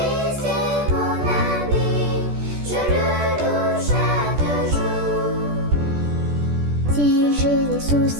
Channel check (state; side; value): late; left; 14 ms